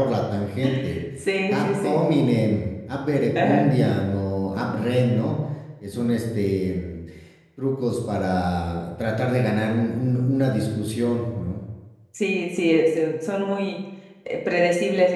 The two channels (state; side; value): identical; both; correlation 1.00